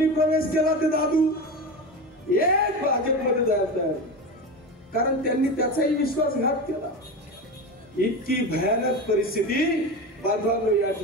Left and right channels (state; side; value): normal; both; correlation 0.23